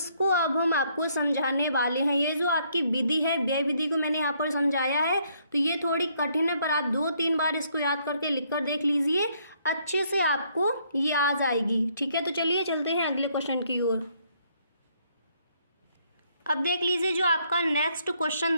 अब हम आपको समझाने वाले हैं। ये जो आपकी विधि है, व्यय विधि को मैंने यहाँ पर समझाया है, तो ये थोड़ी कठिन है, पर आप 2-3 बार इसको याद करके लिख कर देख लीजिए, अच्छे से आपको ये आ जाएगी, ठीक है। तो चलिए चलते हैं अगले क्वेश्चन की ओर। अब देख लीजिए जो आपका नेक्स्ट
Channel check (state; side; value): inverted; both; correlation -0.69